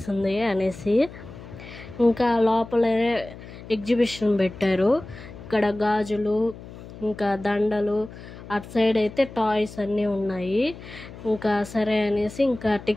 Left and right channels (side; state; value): left; noise; hum, 15 dB below the sound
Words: అనేసి. ఇంకా లోపలే ఎగ్జిబిషన్ పెట్టారు. ఇక్కడ గాజులు, ఇంకా దండలు, అటు సైడ్ అయితే టాయ్స్ అన్నీ ఉన్నాయి. ఇంకా సరే అనేసి ఇంకా